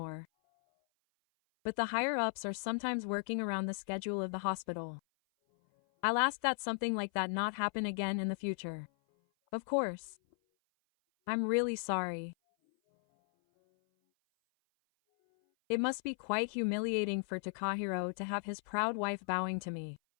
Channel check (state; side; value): silent; right; 54 dB below the other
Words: But the higher-ups are sometimes working around the schedule of the hospital. I'll ask that something like that not happen again in the future. Of course. I'm really sorry. It must be quite humiliating for Takahiro to have his proud wife bowing to me.